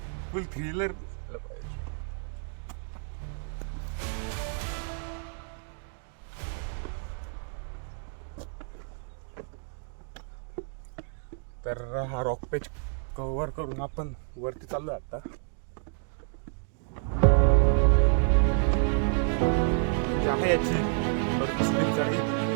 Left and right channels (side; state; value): left; silent; 58 dB below the other